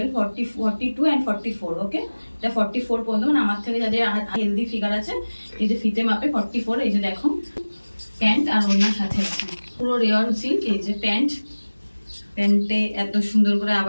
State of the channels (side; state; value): both; inverted; correlation -1.00